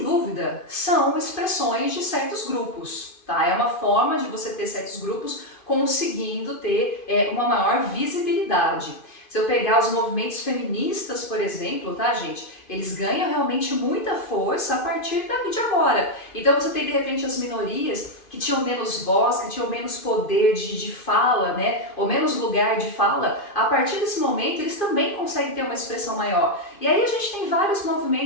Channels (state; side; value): late; right; 2.5 ms